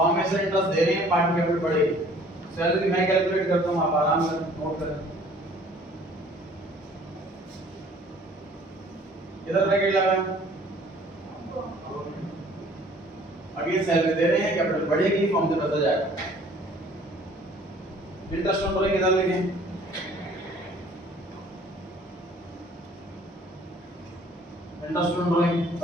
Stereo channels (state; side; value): normal; both; correlation 0.55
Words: में से इंटरेस्ट दे रहे हैं, पार्ट कैपिटल बढ़ेगी, सैलरी मैं कैलकुलेट करता हूं, आप आराम से नोट करें। इधर ब्रैकेट लगाएं, अगली सैलरी दे रहे हैं, कैपिटल बढ़ेगी, फॉर्म से बचा जाएगा। इंटरेस्ट ऑन बोलेंगे इधर लिखें, इंटरेस्ट ऑन बोलेंगे